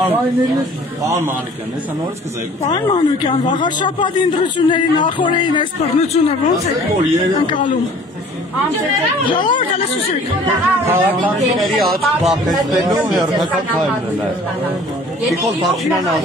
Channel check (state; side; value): normal; both; correlation 0.50